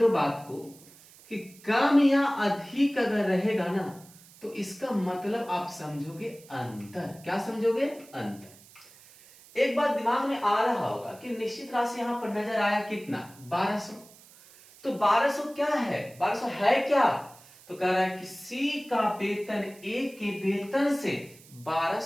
बात को कि कम या अधिक अगर रहेगा ना तो इसका मतलब आप समझोगे अंतर। क्या समझोगे, अंतर। एक बात दिमाग में आ रहा होगा कि निश्चित राशि यहां पर नजर आया कितना, 1200। तो 1200 क्या है, 1200 है क्या, तो कह रहा है कि सी का वेतन ए के वेतन से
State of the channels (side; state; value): right; noise; hiss, 23 dB below the sound